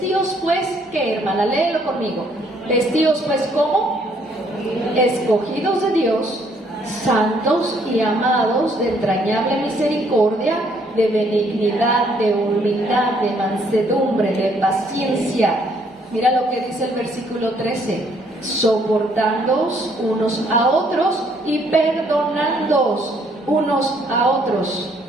pues, ¿qué, hermana? Léelo conmigo. Vestíos pues, ¿cómo? Escogidos de Dios, santos y amados, de entrañable misericordia, de benignidad, de humildad, de mansedumbre, de paciencia. Mira lo que dice el versículo 13: soportándoos unos a otros y perdonándoos unos a otros.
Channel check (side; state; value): both; normal; correlation 0.66